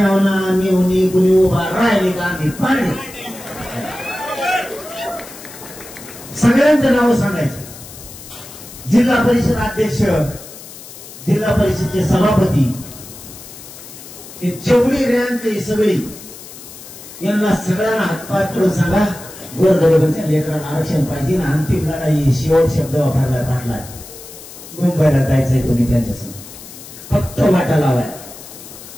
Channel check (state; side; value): noise; left; hiss, 16 dB below the sound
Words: मेवणी कुणी उभा राहिली का आम्ही पाणी. सगळ्यांचं नाव सांगायचं. जिल्हा परिषद अध्यक्ष, जिल्हा परिषदचे सभापती, हे जेवढी रँक आहे सगळी यांना सगळ्यांना हातपाय करून सांगा गोरगरिबांच्या लेकरांना आरक्षण पाहिजे. अंतिम लढाई शेवट शब्द वापरला पाटला. मुंबईला जायचंय तुम्ही त्यांच्यासमोर, फक्त वाटा लावाय.